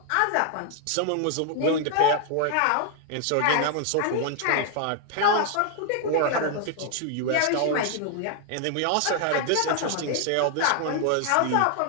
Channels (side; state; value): both; different; correlation 0.00